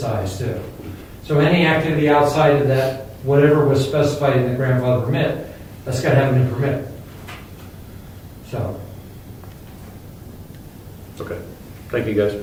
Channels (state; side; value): identical; both; correlation 1.00